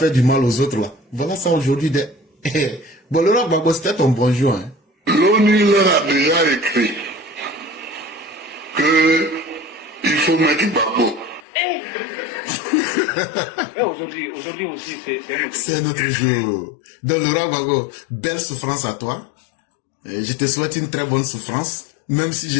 du mal aux autres là, voilà ça aujourd'hui. Bon, le roi Babo, c'était ton bonjour. Hein. L'ONU leur a déjà écrit que il faut mettre Babo. Aujourd'hui aussi, c'est notre jour. Donc, le roi Babo, belle souffrance à toi. Je te souhaite une très bonne souffrance, même si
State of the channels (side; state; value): right; drops out; at 11.4 s